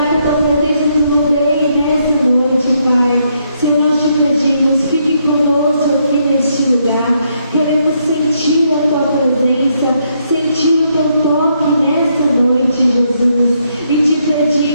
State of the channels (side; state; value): both; inverted; correlation -0.75